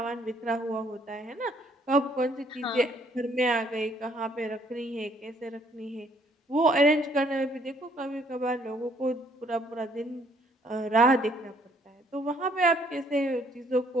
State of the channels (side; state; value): both; normal; correlation 0.64